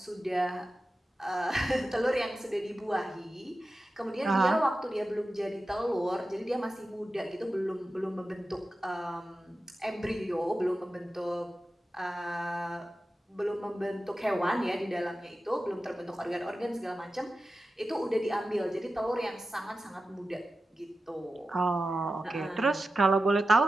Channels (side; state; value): both; normal; correlation 0.93